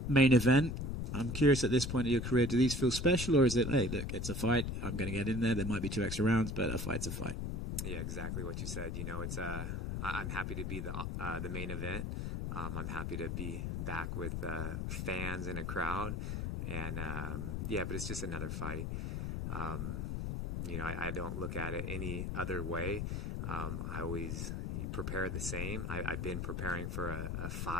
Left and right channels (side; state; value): left; noise; rumble, 3 dB below the sound